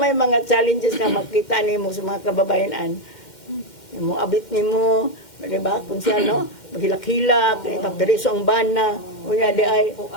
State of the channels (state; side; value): late; right; 2.1 ms